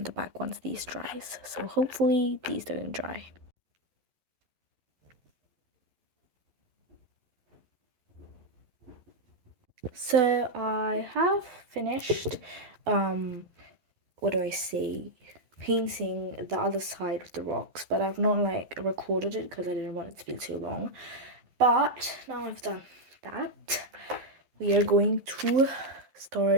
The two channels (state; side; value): late; left; 11 ms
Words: the back once these dries. So hopefully these don't dry. So I have finished, what do I say, painting the other side of the rocks, but I've not like recorded it because I didn't want it to be too long. But now I've done that, we are going to